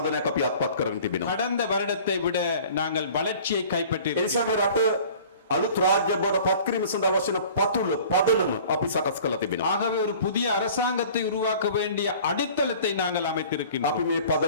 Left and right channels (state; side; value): inverted; both; correlation -0.47